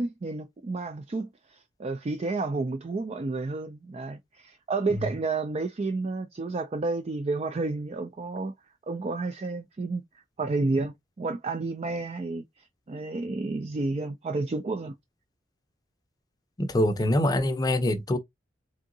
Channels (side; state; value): both; normal; correlation 0.67